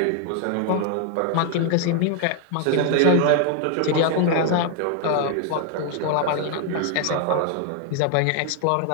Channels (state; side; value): different; both; correlation 0.01